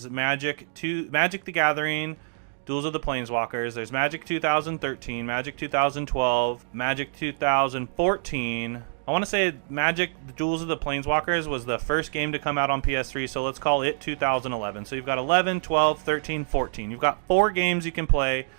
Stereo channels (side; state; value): left; silent; digital silence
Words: Magic the Gathering, Duels of the Planeswalkers. There's Magic 2013, Magic 2012, Magic 2014. I want to say Magic the Duels of the Planeswalkers was the first game to come out on PS3, so let's call it 2011. So you've got 11, 12, 13, 14. You've got 4 games you can play